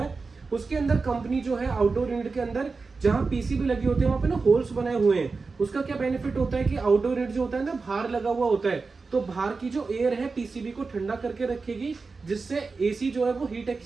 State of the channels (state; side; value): quieter; left; 4.3 dB